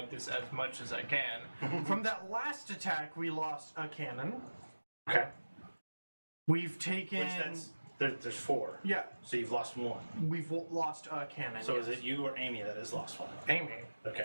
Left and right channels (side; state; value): both; inverted; correlation -1.00